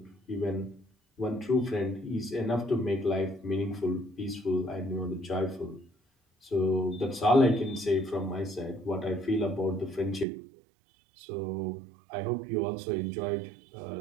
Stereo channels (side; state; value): left; drops out; at 10.2 s